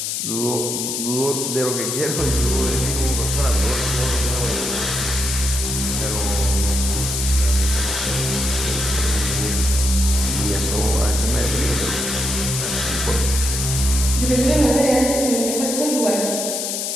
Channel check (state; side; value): noise; left; hiss, 2 dB below the sound